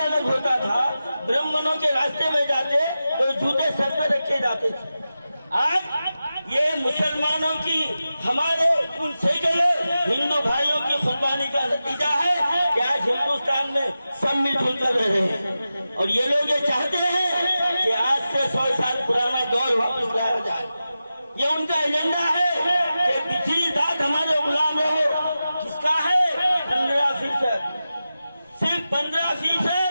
अलग होता था, ब्राह्मणों के रास्ते में जाते तो जूते सर पर रखे जाते थे। आज ये मुसलमानों की हमारे उन सैकड़ों हिंदू भाइयों की कुर्बानी का नतीजा है कि आज हिंदुस्तान में सब मिलजुल कर रहे हैं। और ये लोग ये चाहते हैं कि आज से 100 साल पुराना दौर वापस लाया जाए। ये उनका एजेंडा है कि पिछली जात हमारे गुलाम रहो। किसका है? 15%, सिर्फ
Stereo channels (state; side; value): inverted; both; correlation -0.93